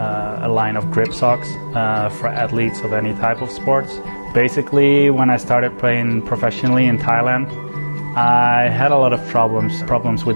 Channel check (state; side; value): inverted; both; correlation -1.00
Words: line of grip socks for athletes of any type of sports. Basically, when I started playing professionally in Thailand, I had a lot of problems